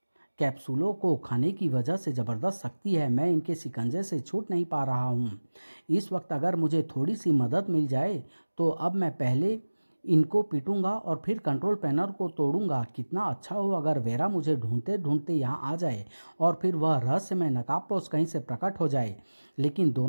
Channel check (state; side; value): inverted; both; correlation -1.00